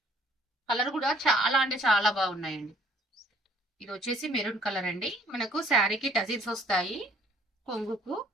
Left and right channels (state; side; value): normal; both; correlation 0.60